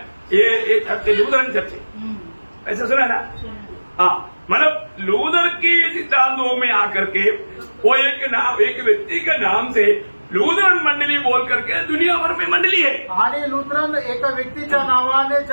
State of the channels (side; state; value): both; inverted; correlation -1.00